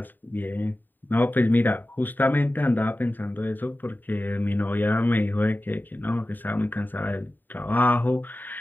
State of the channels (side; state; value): right; late; 0.090 ms